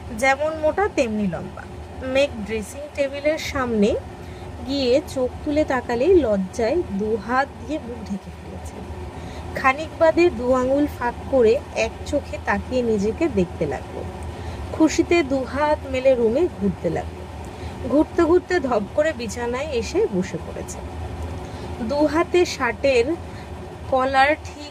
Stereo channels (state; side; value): identical; both; correlation 1.00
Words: যেমন মোটা তেমনি লম্বা। মেঘ ড্রেসিং টেবিলের সামনে গিয়ে চোখ তুলে তাকালেই লজ্জায় দু হাত দিয়ে মুখ ঢেকে ফেলেছে। খানিক বাদে দু আঙুল ফাঁক করে এক চোখে তাকিয়ে নিজেকে দেখতে লাগলো। খুশিতে দু হাত মেলে রুমে ঘুরতে লাগলো। ঘুরতে ঘুরতে ধপ করে বিছানায় এসে বসে পড়েছে। দু হাতে শার্টের কলার